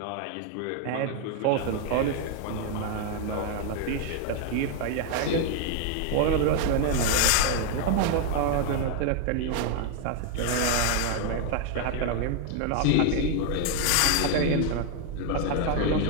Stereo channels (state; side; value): different; both; correlation 0.00